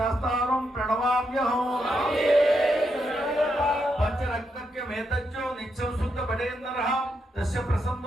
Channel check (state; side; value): normal; both; correlation 0.81